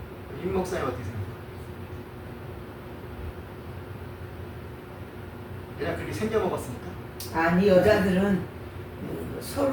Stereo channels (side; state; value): both; identical; correlation 1.00